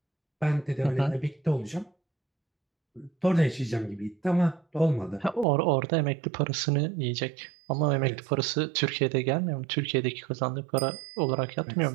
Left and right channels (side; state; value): left; drops out; at 5.5 s